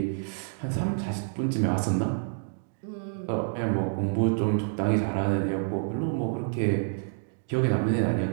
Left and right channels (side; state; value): left; silent; digital silence